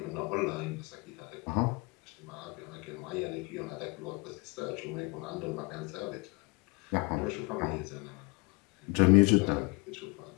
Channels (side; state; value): right; quieter; 28.1 dB